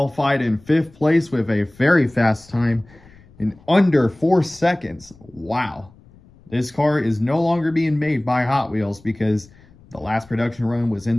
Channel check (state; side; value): noise; left; rumble, 26 dB below the sound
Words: in 5th place with a very fast time in under 4 seconds. Wow. This car is no longer being made by Hot Wheels because the last production run was in